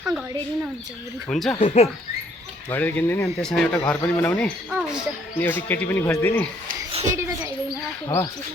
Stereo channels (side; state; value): both; normal; correlation 0.65